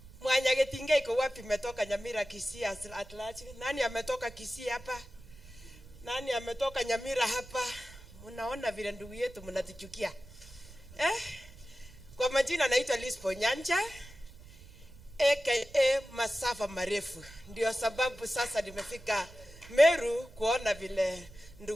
Mwanya Getinga iko wapi? Metoka Nyamira, Kisii at large. Nani ametoka Kisii hapa? Nani ametoka Nyamira hapa? Mnaona vile ndugu yetu mnatuchukia. Kwa majina naitwa Lispa Onyancha, aka masafa marefu. Ndio sababu sasa nimefika Meru kuona vile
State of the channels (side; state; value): right; noise; rumble, 19 dB below the sound